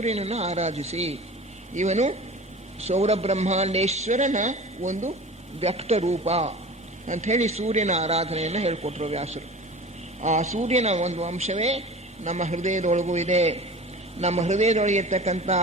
ಆರಾಧಿಸಿ. ಇವನು ಸೌರಬ್ರಹ್ಮಾಂಡೇಶ್ವರನ ಒಂದು ವ್ಯಕ್ತ ರೂಪ ಅಂಥೇಳಿ ಸೂರ್ಯನ ಆರಾಧನೆಯನ್ನು ಹೇಳಿಕೊಟ್ರು ವ್ಯಾಸರು. ಆ ಸೂರ್ಯನ ಒಂದು ಅಂಶವೇ ನಮ್ಮ ಹೃದಯದೊಳಗೂ ಇದೆ. ನಮ್ಮ ಹೃದಯದೊಳಗಿರ್ತಕ್ಕಂಥ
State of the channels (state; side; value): normal; both; correlation 0.38